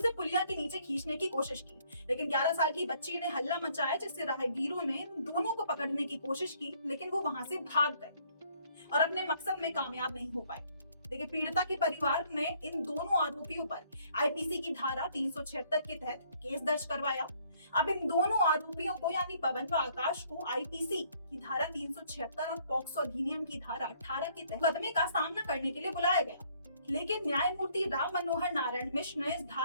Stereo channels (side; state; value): both; inverted; correlation -0.65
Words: पुलिया के नीचे खींचने की कोशिश की। लेकिन 11 साल की बच्ची ने हल्ला मचाया, जिससे राहगीरों ने दोनों को पकड़ने की कोशिश की, लेकिन वो वहां से भाग गए और अपने मकसद में कामयाब नहीं हो पाए। देखिए, पीड़िता के परिवार ने इन दोनों आरोपियों पर आईपीसी की धारा 376 के तहत केस दर्ज करवाया। अब इन दोनों आरोपियों को यानी पवन व आकाश को आईपीसी की धारा 376 और पॉक्सो अधिनियम की धारा 18 के तहत मुकदमे का सामना करने के लिए बुलाया गया। लेकिन न्यायमूर्ति राम मनोहर नारायण मिश्र ने इस